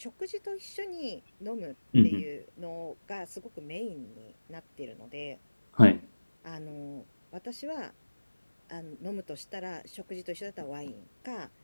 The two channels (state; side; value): inverted; both; correlation -1.00